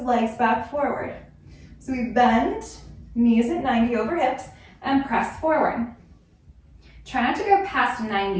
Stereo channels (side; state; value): both; identical; correlation 1.00